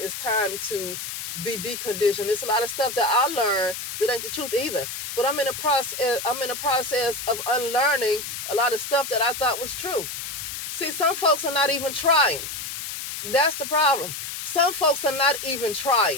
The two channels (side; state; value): left; noise; hiss, 6 dB below the sound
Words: time to be deconditioned. There's a lot of stuff that I learned that ain't the truth either. But I'm in a process of unlearning a lot of stuff that I thought was true. See, some folks are not even trying. That's the problem. Some folks are not even